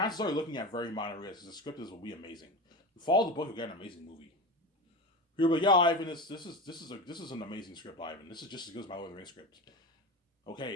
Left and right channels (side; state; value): both; normal; correlation 0.25